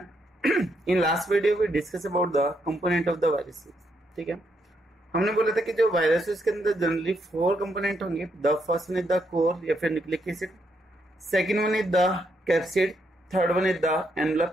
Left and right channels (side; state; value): both; normal; correlation 0.77